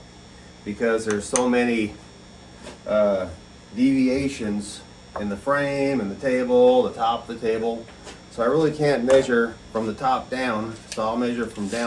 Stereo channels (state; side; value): identical; both; correlation 1.00